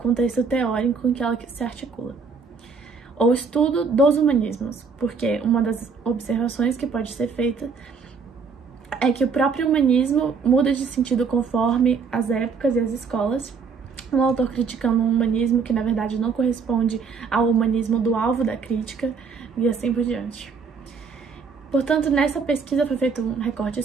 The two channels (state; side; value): quieter; left; 5.3 dB